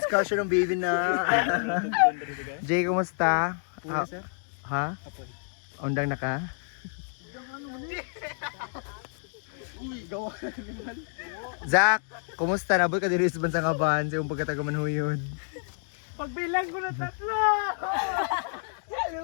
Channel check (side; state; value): right; silent; digital silence